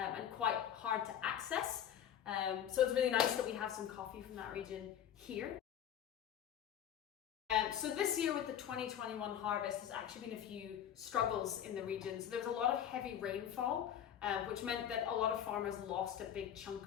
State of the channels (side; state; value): right; quieter; 9.8 dB